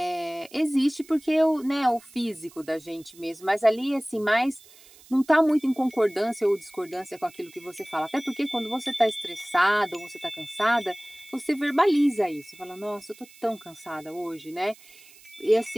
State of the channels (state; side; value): noise; right; hiss, 24 dB below the sound